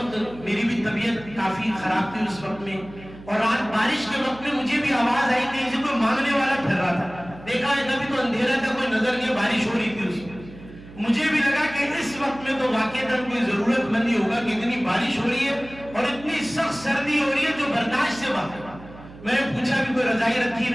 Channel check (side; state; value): right; noise; hum, 18 dB below the sound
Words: میری بھی طبیعت کافی خراب تھی اس وقت میں, اور رات بارش کے وقت میں مجھے بھی آواز آئی کہ اسے کوئی مانگنے والا پھر رہا تھا، دیکھا ہے کبھی تو اندھیرا تھا، کوئی نظر نہیں، بارش ہو رہی تھی اس میں. مجھے بھی لگا کہ اس وقت میں تو واقعتاً کوئی ضرورت مند ہی ہوگا کہ اتنی بارش ہو رہی ہے اور اتنی سخت سردی ہو رہی ہے جو برداشت سے باہر. میں نے پوچھا بھی کوئی رضائی رکھی